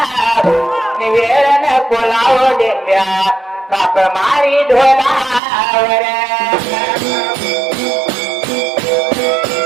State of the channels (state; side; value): drops out; left; at 5.4 s